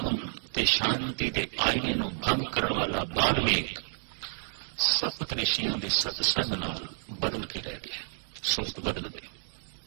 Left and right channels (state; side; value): silent; left; digital silence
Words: ते शांति दे आईने नू भंग करन वाला बाल्मीक सप्त ऋषियां दे सतसंग नाल बदल के रह गया, सुरत बदल गई,